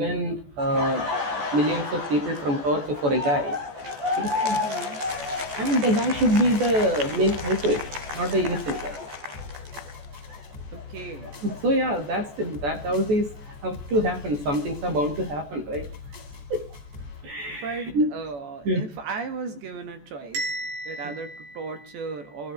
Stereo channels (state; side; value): late; left; 14 ms